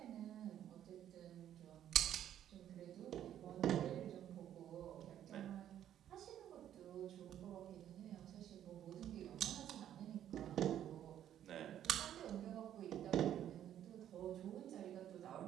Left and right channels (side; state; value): left; quieter; 10.9 dB